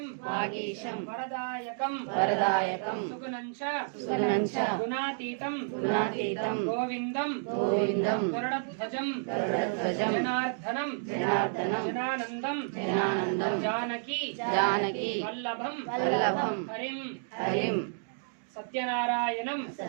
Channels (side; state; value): left; silent; digital silence